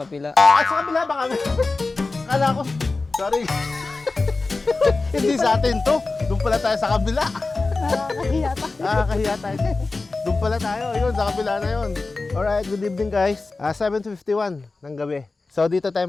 At sa kabila ba kami? Kala ko, sorry. Hindi sa atin to. Doon pala tayo sa kabila. Nakakahiya tayo. Doon pala tayo. Yun, sa kabila na yun. Alright, good evening guys. 7:51 ng gabi. So dito tayo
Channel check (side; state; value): right; quieter; 3.6 dB